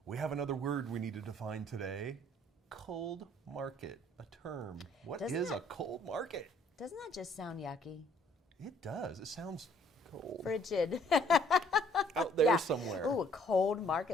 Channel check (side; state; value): both; normal; correlation 0.62